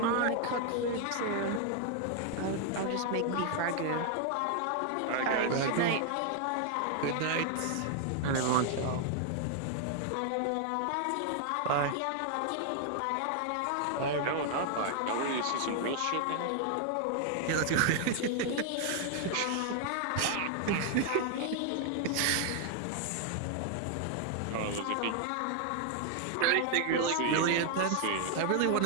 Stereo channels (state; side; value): different; both; correlation 0.00